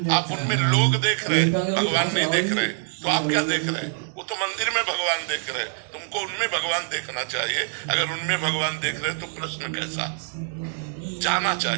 आप उनमें लोग देख रहे हैं, भगवान नहीं देख रहे, तो आप क्या देख रहे हैं? वो तो मंदिर में भगवान देख रहे हैं, तुमको उनमें भगवान देखना चाहिए। अगर उनमें भगवान देख रहे तो प्रश्न कैसा? जाना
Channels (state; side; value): silent; left; 62 dB below the other